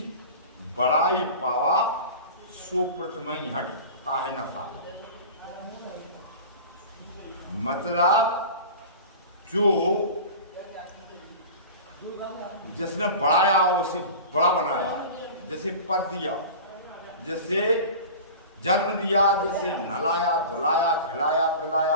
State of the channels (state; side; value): inverted; both; correlation -0.35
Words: बड़ाई पावा सो प्रथमहि हटता है नशा। मतलब जो जिसने बढ़ाया उसे बड़ा बनाया, जैसे पद दिया, जैसे जन्म दिया, जैसे नहलाया धुलाया खिलाया